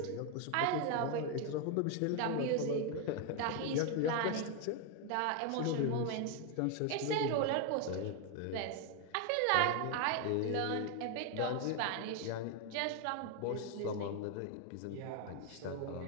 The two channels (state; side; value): different; both; correlation 0.01